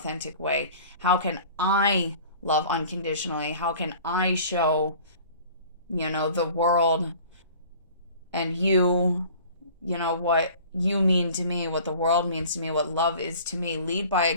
way? How can I love unconditionally? How can I show, the world and you, what you mean to me, what the world means to me, what love is to me? Lead by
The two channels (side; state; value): both; inverted; correlation -0.46